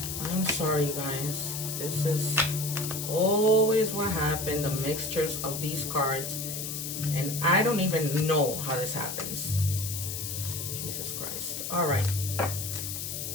I'm sorry, you guys. This is always what happened, the mixtures of these cards. And I don't even know how this happens. Jesus Christ. All right.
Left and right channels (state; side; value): noise; left; hiss, 5 dB below the sound